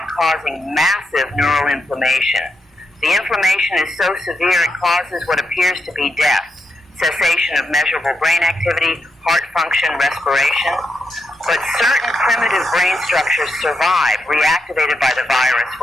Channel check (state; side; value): normal; both; correlation 0.83